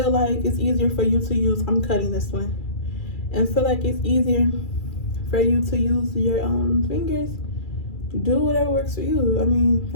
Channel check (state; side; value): late; right; 2.3 ms